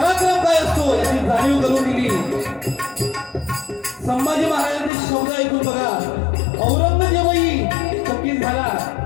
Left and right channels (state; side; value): drops out; right; at 4.9 s